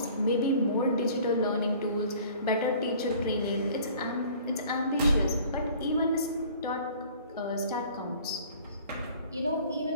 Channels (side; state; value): both; inverted; correlation -0.50